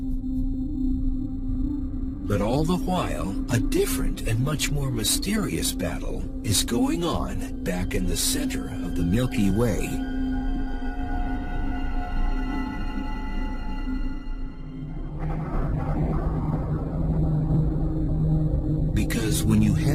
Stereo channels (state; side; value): identical; both; correlation 1.00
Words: But all the while, a different and much more mysterious battle is going on back in the center of the Milky Way. Because when you